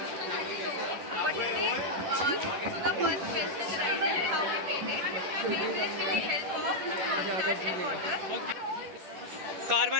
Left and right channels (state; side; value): late; left; 10 ms